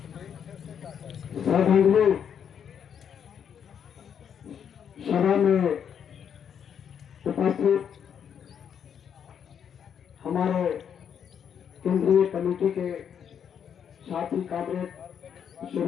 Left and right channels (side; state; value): right; quieter; 8.1 dB